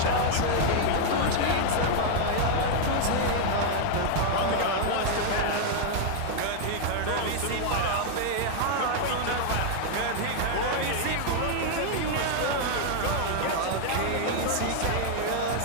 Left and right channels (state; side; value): different; both; correlation 0.00